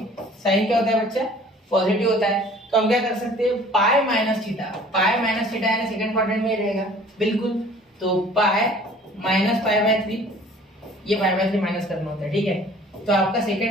साइन क्या होता है बच्चा, पॉजिटिव होता है। तो हम क्या कर सकते हैं, pi minus theta, pi minus theta यानी सेकंड क्वाड्रेंट में रहेगा बिल्कुल। तो पाई माइनस पाई बाय 3, ये पाई बाय 3 माइनस करना होता है, ठीक है। तो आपका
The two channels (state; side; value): normal; both; correlation 0.50